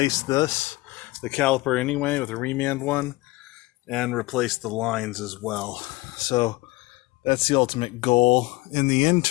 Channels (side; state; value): right; quieter; 21.6 dB